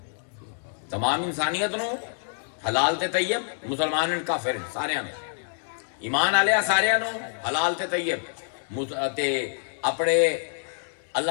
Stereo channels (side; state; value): right; silent; digital silence